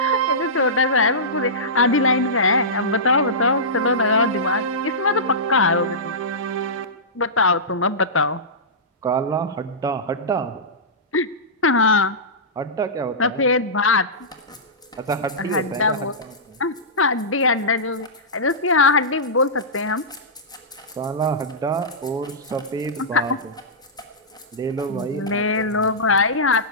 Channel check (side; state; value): both; normal; correlation -0.17